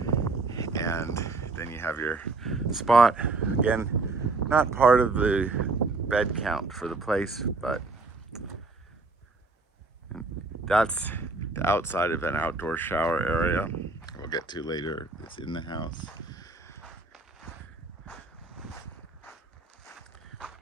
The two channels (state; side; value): quieter; left; 3.6 dB